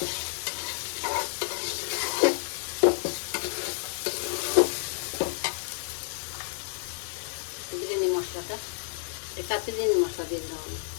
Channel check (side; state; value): right; silent; 58 dB below the other